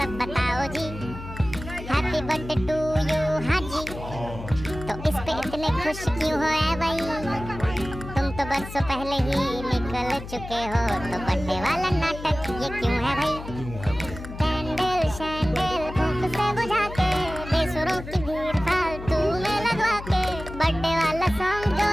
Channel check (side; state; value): left; noise; hum, 11 dB below the sound